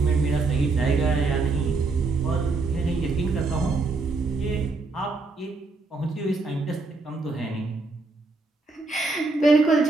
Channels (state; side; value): quieter; left; 3.7 dB